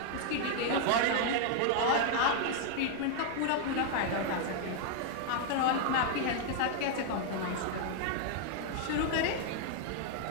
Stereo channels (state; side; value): different; both; correlation 0.00